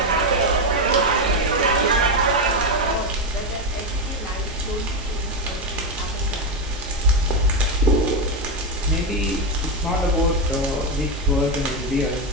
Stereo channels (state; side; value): normal; both; correlation 0.09